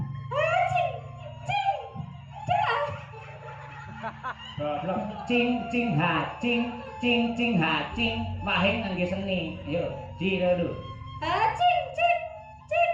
Cing cing ha cing cing cing ha cing wahing ngangge seni. Ayo, ji dulu. Cing cing cing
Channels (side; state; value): both; identical; correlation 1.00